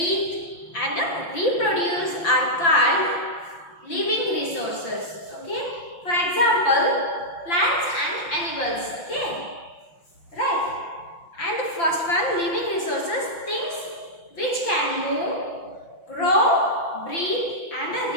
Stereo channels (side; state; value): right; late; 5.9 ms